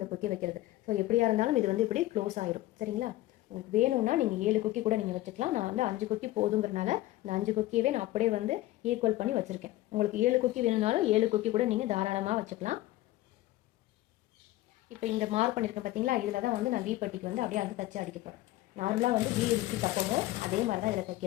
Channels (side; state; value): right; quieter; 16.4 dB